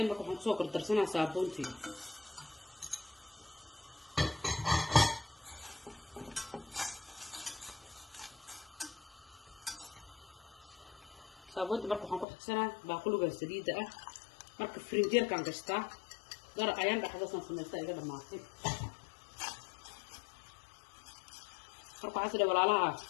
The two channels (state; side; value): drops out; right; at 12.2 s